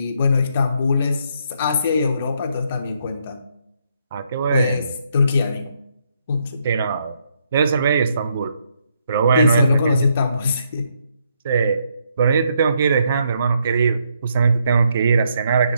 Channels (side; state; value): both; inverted; correlation -0.74